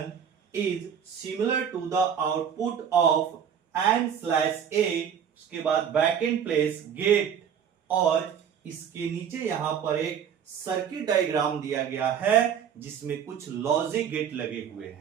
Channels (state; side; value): quieter; left; 8.1 dB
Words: is similar to the output of n/a। उसके बाद बैक एंड प्लेस गेट, और इसके नीचे यहां पर एक सर्किट डायग्राम दिया गया है जिसमें कुछ लॉजिक गेट लगे हुए